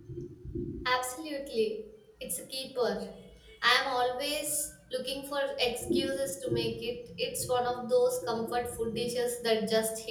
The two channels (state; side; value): identical; both; correlation 1.00